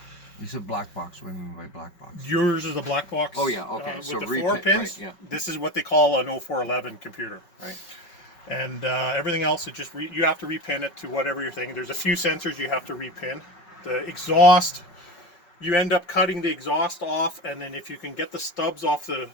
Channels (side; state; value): right; late; 5.3 ms